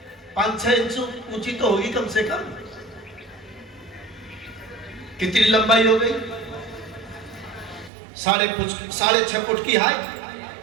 5-6 इंच ऊंची तो होगी कम से कम। कितनी लंबाई हो गई? 6.5 फुट की हाइट,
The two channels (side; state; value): left; drops out; at 7.9 s